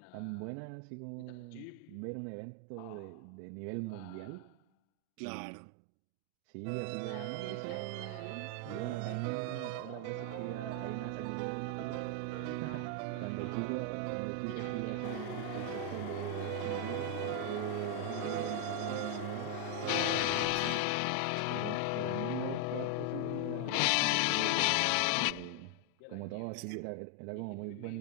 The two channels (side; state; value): both; different; correlation 0.00